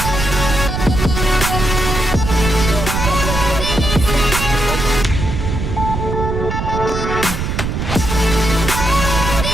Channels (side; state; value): right; noise; rumble, 3 dB below the sound